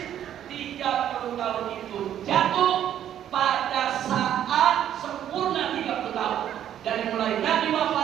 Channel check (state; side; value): quieter; left; 10.6 dB